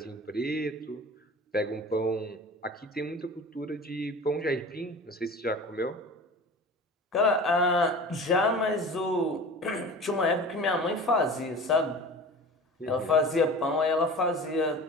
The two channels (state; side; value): normal; both; correlation 0.38